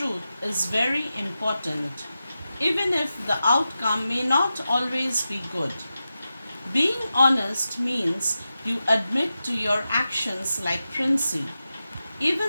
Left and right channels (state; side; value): inverted; both; correlation -0.92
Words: is very important, even if the outcome may not always be good. Being honest means you admit to your actions like Princey,